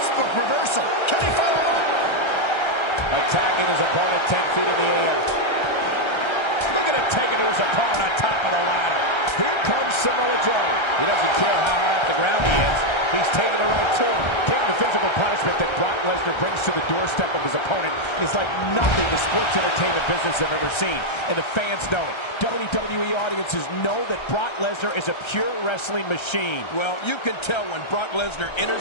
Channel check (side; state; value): right; late; 1.3 ms